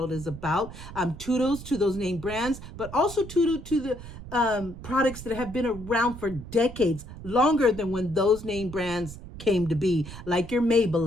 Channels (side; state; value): right; noise; rumble, 13 dB below the sound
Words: is about. Toodles to those name brands, but also toodle to the products that have been around for decades, longer than when those name brands came to be, like your